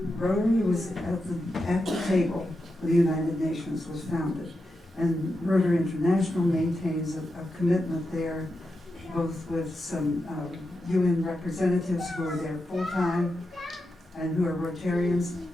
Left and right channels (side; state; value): both; normal; correlation 0.88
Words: Rotary was at the table when the United Nations was founded, and Rotary International maintains a commitment there, both with some UN representatives who are there full-time and who are Rotarians,